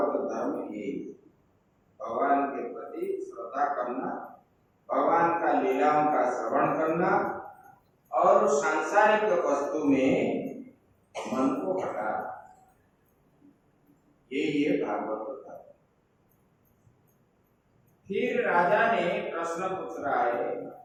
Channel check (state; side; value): identical; both; correlation 1.00